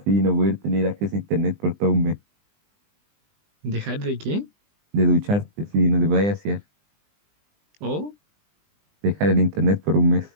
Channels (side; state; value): left; late; 20 ms